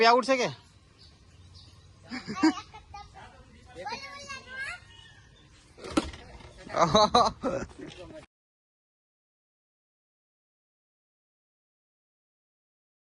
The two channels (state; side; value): identical; both; correlation 1.00